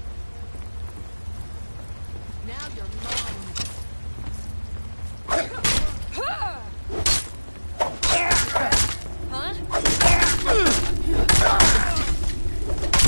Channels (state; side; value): inverted; both; correlation -1.00